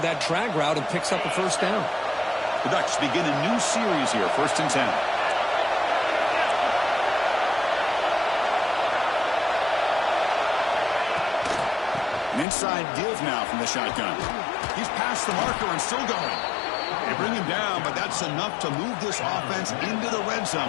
that drag route and picks up a 1st down. The Ducks begin a new series here, 1st and 10. An inside give now from the shotgun. He's past the marker and still going. They bring him down, but that's enough to move this offense into the red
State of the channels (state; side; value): drops out; right; at 12.5 s